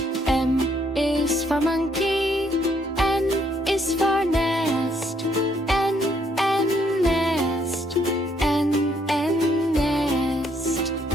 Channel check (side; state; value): both; normal; correlation 0.70